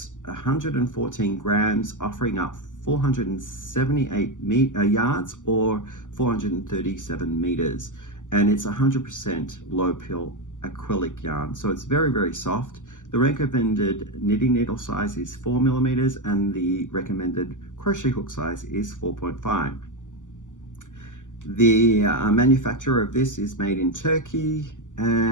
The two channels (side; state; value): right; late; 0.87 ms